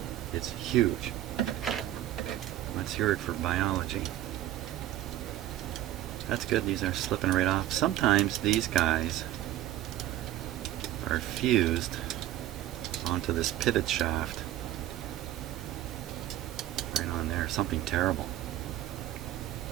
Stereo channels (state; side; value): quieter; left; 13.6 dB